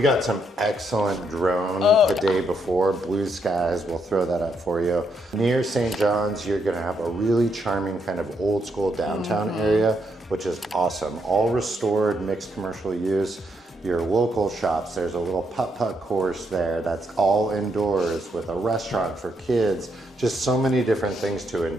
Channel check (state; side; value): normal; both; correlation 0.77